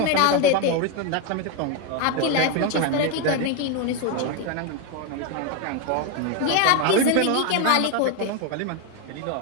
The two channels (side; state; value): both; different; correlation 0.02